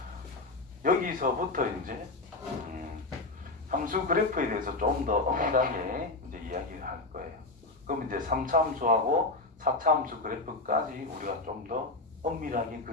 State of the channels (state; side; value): quieter; right; 3.1 dB